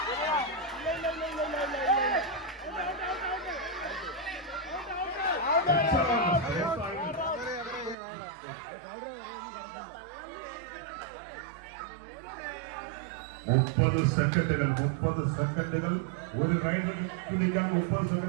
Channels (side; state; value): left; drops out; at 8.0 s